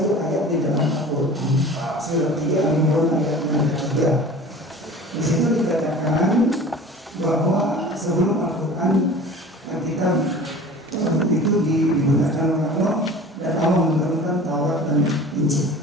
ayat di dalam Al-Quran surat 3 Al-Imran ayat 3. Di situ dikatakan bahwa sebelum Al-Quran yang kita itu digunakan oleh Allah dan Allah menurunkan Taurat dan Injil.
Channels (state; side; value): normal; both; correlation 0.41